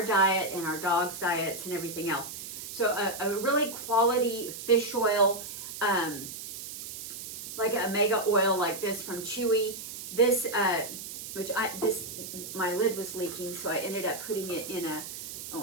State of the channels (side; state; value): right; noise; hiss, 9 dB below the sound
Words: diet and our dogs' diets and everything else. So a really quality fish oil, like an omega oil like this from Chewy. This, my lid was leaking, so I ended up putting it in a, oh,